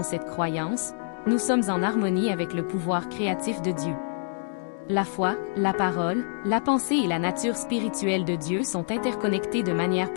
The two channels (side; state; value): right; silent; digital silence